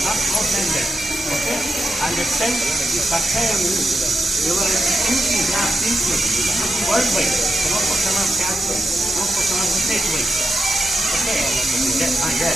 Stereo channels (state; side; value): normal; both; correlation 0.88